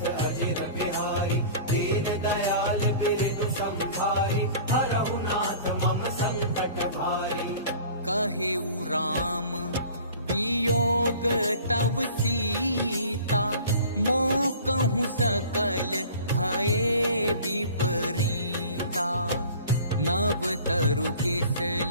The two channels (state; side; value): inverted; both; correlation -0.44